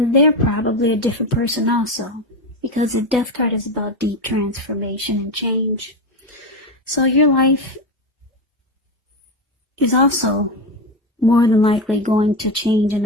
they're probably a different person also, because the death card is about deep transformation and change. So your life is also more than likely going to change in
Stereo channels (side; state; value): both; normal; correlation 0.15